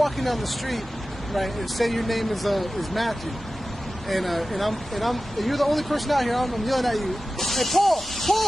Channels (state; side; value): normal; both; correlation 0.95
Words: down the street, right, and say your name is Matthew, and you're the only person out here, I'm yelling at you, hey Paul,